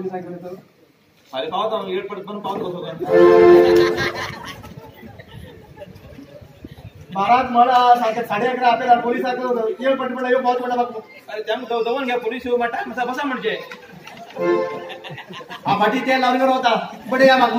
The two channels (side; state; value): both; identical; correlation 1.00